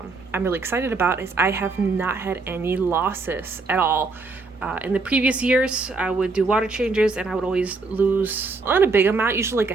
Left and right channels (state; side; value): quieter; left; 3.9 dB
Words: really excited about is I have not had any losses at all. In the previous years, I would do water changes and I would always lose not a big amount, usually like a